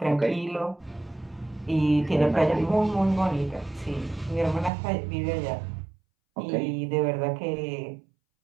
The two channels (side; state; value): left; drops out; at 4.7 s